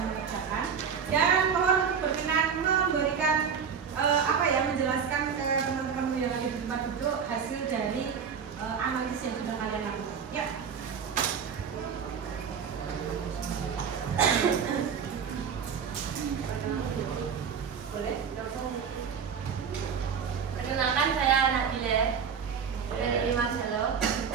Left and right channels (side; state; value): left; quieter; 6.8 dB